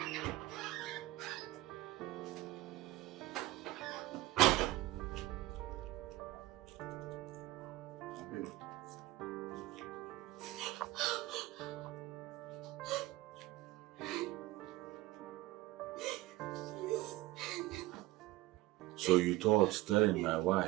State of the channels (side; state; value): left; quieter; 17.9 dB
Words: So you thought telling my